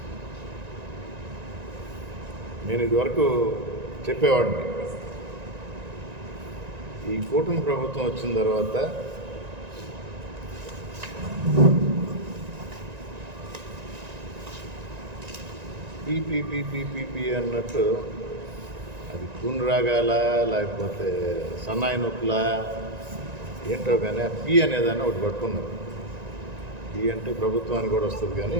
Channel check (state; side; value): late; left; 1.9 ms